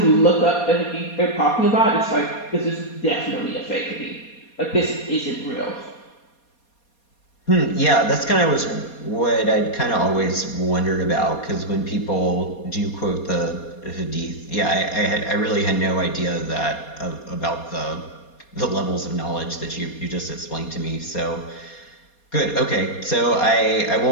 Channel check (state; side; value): late; right; 4.2 ms